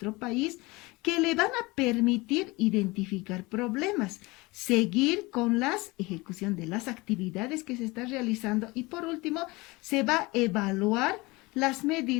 país que le van a permitir identificar problemas, seguir con la ejecución de las actividades que se están realizando y por último se va a evaluar las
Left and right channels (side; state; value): right; quieter; 23.3 dB